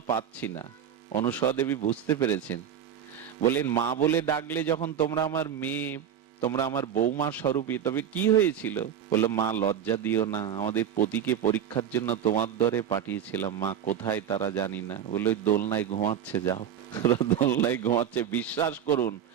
পাচ্ছি না। অনুসূয়া দেবী বুঝতে পেরেছেন, বলেন মা বলে ডাকলে যখন তোমরা আমার মেয়ে, তোমরা আমার বৌমা স্বরূপী, তবে কি হয়েছিল? বললো মা লজ্জা দিও না, আমাদের পতিকে পরীক্ষার জন্য তোমার দরে পাঠিয়েছিলাম, মা কোথায় তারা জানি না। বললো দোলনায় ঘুমাচ্ছে, যাও। দোলনায় ঘুমাচ্ছে। বিশ্বাস করুন,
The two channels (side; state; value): left; quieter; 9.1 dB